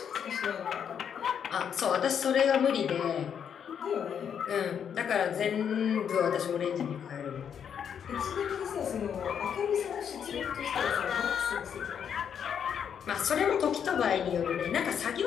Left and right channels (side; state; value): right; quieter; 8.0 dB